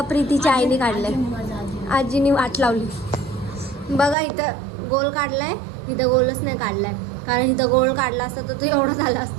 प्रीतीच्या आईने काढलंय. आजीने वाट लावली. बघा इथं गोल काढलाय, इथं गोलच नाही काढलाय. कारण इथं गोल काढला असता तर तो एवढं झाला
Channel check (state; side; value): drops out; left; at 4.2 s